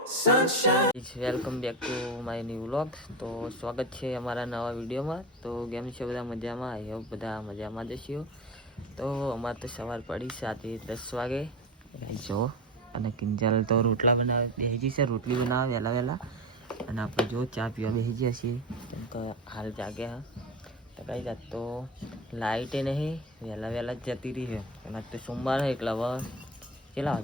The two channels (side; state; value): both; normal; correlation 0.25